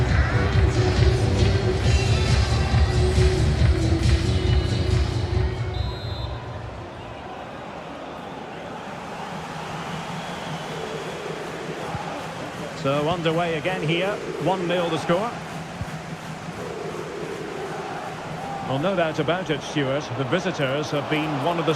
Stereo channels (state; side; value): identical; both; correlation 1.00